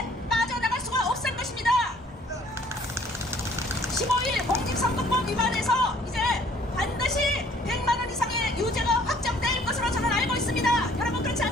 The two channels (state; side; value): normal; both; correlation 0.58